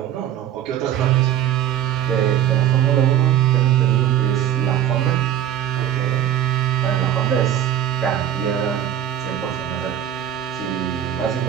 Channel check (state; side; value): quieter; left; 10.9 dB